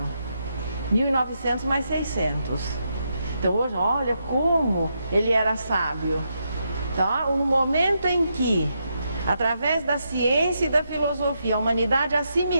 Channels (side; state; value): both; inverted; correlation -0.82